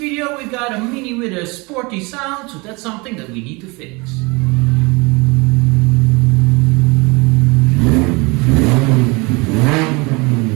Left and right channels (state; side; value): quieter; left; 27.0 dB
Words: we got a Mini with a sporty sound, so that's something that we need to fix.